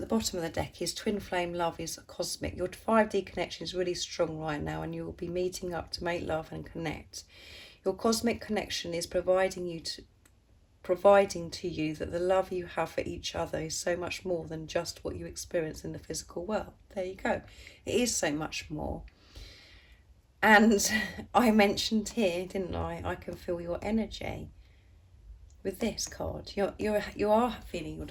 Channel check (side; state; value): both; identical; correlation 1.00